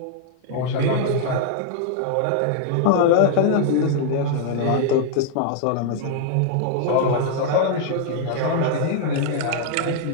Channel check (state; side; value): different; both; correlation -0.01